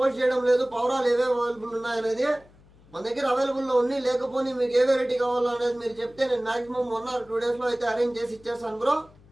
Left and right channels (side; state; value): left; noise; hum, 26 dB below the sound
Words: చేయడం లేదు, పవరాలు ఏవే అవైలబుల్ ఉన్నాయనేది. మన దగ్గర అవైలబుల్లో ఉన్నాయి, లేకపోతే మీకు ఏ వెరైటీ కావాలో అనేది మీరు చెప్తే నేను మాక్సిమం 1 or 2 days లో అయితే అరేంజ్ చేసి ఇచ్చేస్తాను బ్రో.